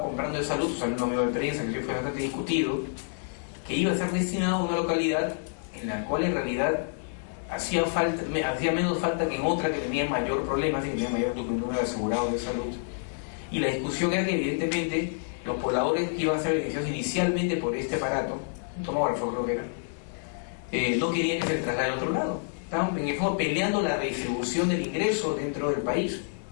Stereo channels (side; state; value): right; silent; 57 dB below the other